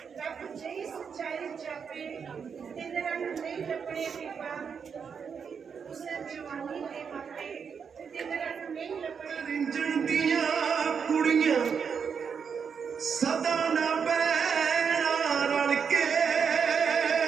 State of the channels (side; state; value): left; quieter; 6.5 dB